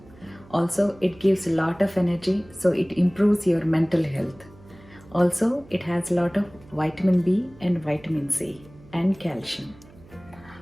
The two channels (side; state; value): right; noise; hum, 24 dB below the sound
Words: Also, it gives a lot of energy, so it improves your mental health. Also, it has a lot of vitamin B and vitamin C and calcium.